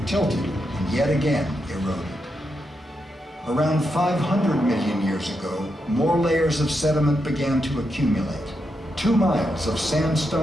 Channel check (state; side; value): normal; both; correlation 0.84